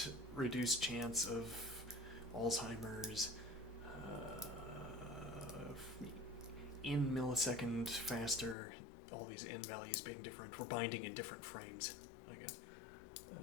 reduced chance of Alzheimer's, in millisecond faster, all these in values being different. We're binding in different frames, I guess.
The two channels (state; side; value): drops out; right; at 8.6 s